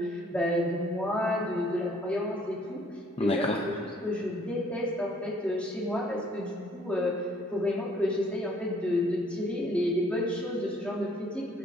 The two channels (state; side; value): normal; both; correlation 0.61